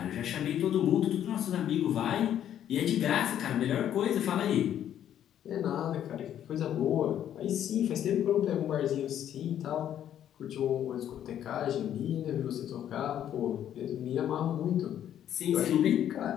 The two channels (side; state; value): right; quieter; 10.5 dB